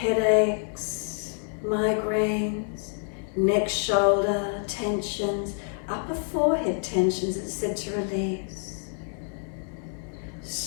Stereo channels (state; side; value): silent; right; 60 dB below the other